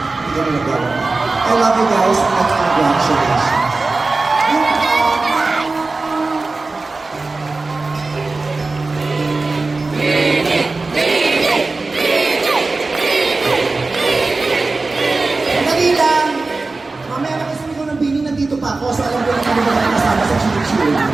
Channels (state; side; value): quieter; left; 3.6 dB